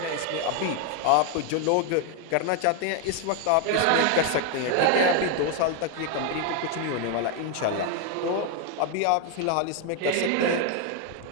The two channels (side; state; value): both; different; correlation 0.01